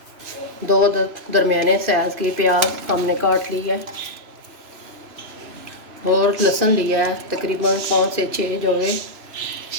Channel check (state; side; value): late; left; 3.0 ms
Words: दो दरमियाने साइज़ की प्याज हमने काट ली है और लहसुन लिया है तकरीबन 5 से 6 जोड़े।